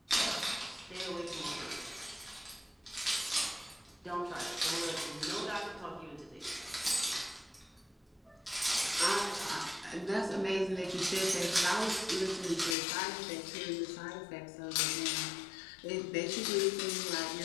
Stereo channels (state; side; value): drops out; right; at 12.8 s